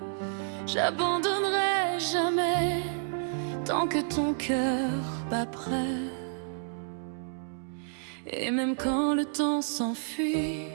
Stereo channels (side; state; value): left; silent; digital silence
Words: J'abandonnerai jamais tant que ton cœur bat prêt. Et même quand le temps s'enfuit,